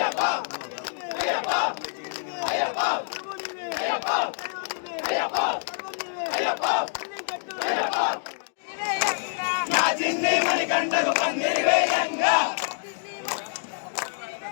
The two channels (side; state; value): right; silent; digital silence